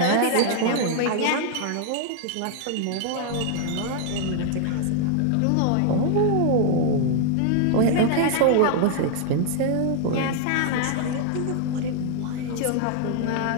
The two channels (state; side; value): different; both; correlation 0.00